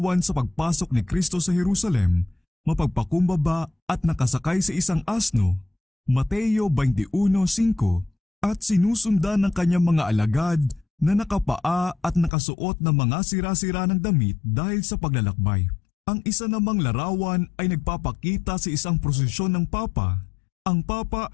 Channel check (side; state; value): right; drops out; at 12.3 s